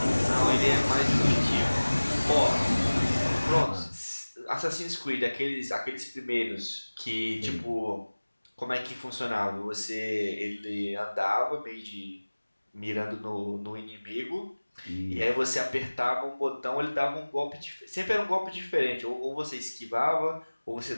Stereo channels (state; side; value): inverted; both; correlation -1.00